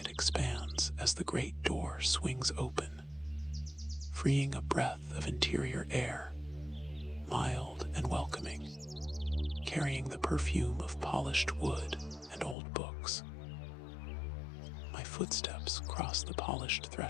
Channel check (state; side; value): drops out; right; at 12.6 s